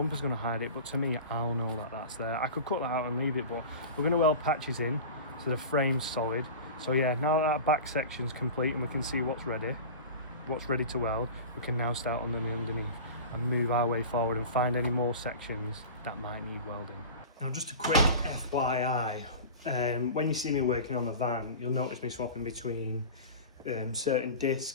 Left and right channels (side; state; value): both; inverted; correlation -0.33